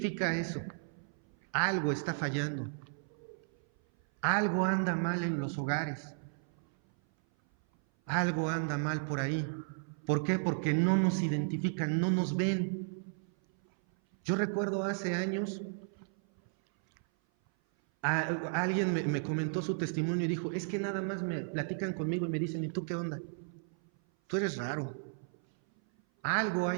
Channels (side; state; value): left; silent; 55 dB below the other